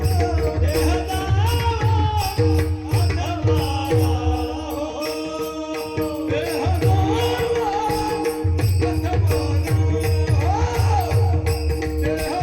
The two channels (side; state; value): both; identical; correlation 1.00